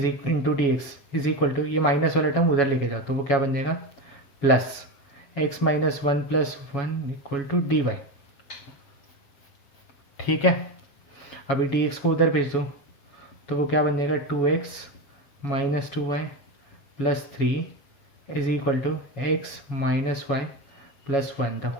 into D x is equal to, ये माइनस वाला टर्म उधर लेके जाओ, तो वो क्या बन जाएगा, plus x minus 1 plus 1 equal to D y, ठीक है। अभी डी एक्स को उधर भेज दो, तो वो क्या बन जाएगा, 2x minus 2y plus 3 is equal to x minus y plus 1 the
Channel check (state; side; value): late; right; 7.6 ms